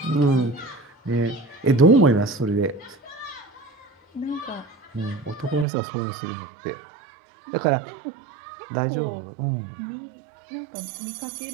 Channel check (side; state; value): left; drops out; at 5.7 s